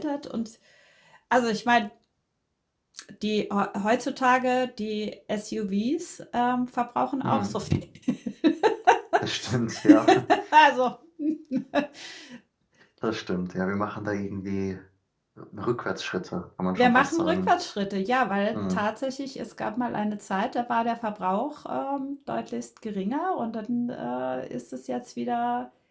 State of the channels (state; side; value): identical; both; correlation 1.00